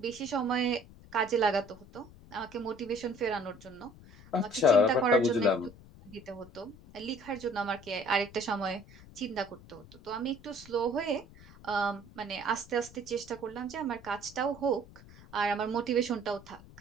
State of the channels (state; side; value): noise; left; rumble, 20 dB below the sound